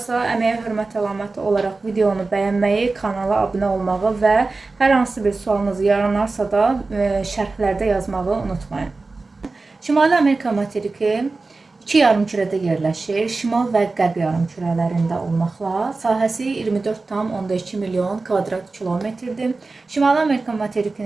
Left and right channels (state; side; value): quieter; left; 3.7 dB